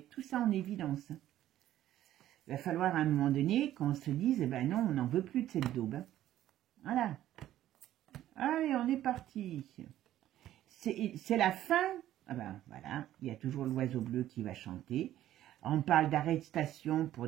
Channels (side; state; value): left; quieter; 13.0 dB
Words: tout ça en évidence. Il va falloir à un moment donné qu'on se dise, eh ben non, on n'en veut plus de cette daube. Hein. Voilà. Allez, on est parti. C'est la fin. Ah ben voilà, il y a toujours l'oiseau bleu qui va chanter. On parle d'arrestation pour